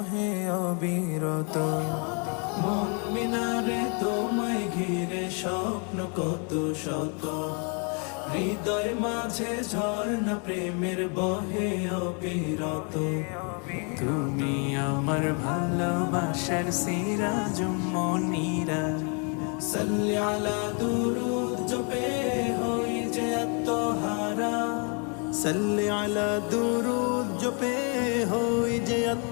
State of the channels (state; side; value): quieter; right; 37.5 dB